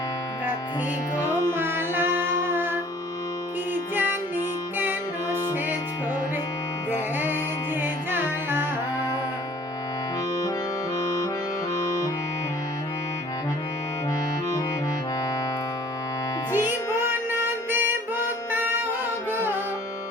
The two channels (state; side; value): normal; both; correlation 0.53